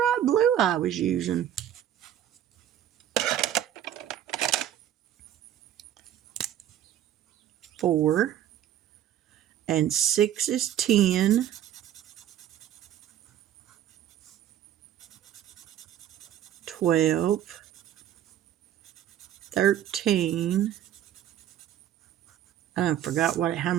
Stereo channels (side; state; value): left; quieter; 11.1 dB